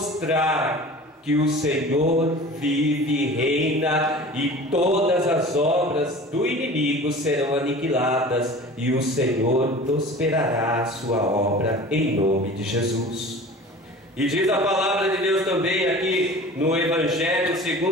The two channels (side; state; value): both; normal; correlation 0.40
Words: que o Senhor vive e reina, e todas as obras do inimigo serão aniquiladas, e o Senhor prosperará a sua obra em nome de Jesus. E diz a palavra de Deus também aqui no Evangelho,